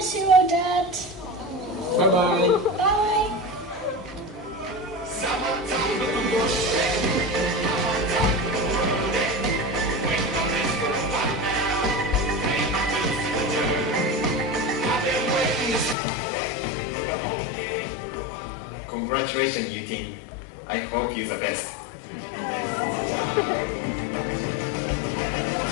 you, Dad. Bye-bye. Bye. Congratulations, you team. I hope you're the best.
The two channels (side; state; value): right; drops out; at 16.0 s